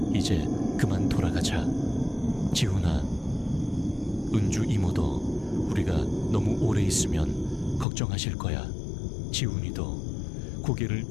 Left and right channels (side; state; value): right; drops out; at 7.9 s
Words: 이제 그만 돌아가자. 지훈아, 은주 이모도 우리가 너무 오래 있으면 걱정하실 거야. 지훈이도 고개를